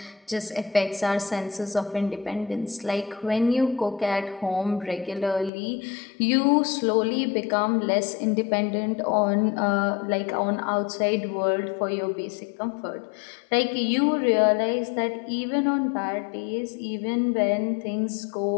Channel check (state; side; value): drops out; right; at 5.5 s